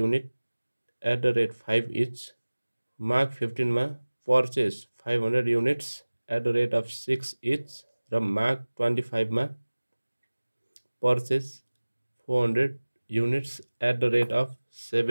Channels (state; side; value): inverted; both; correlation -1.00